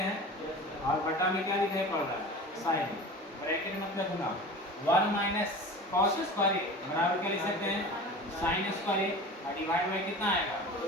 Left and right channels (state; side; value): normal; both; correlation 0.36